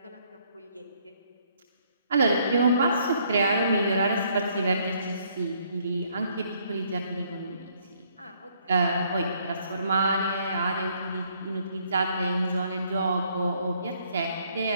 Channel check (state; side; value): inverted; both; correlation -0.67